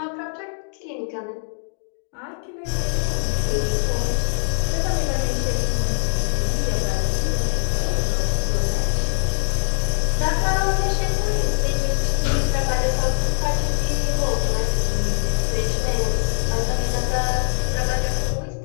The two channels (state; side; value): silent; right; digital silence